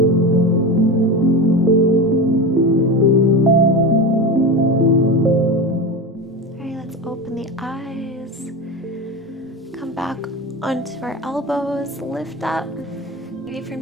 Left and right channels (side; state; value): both; normal; correlation 0.23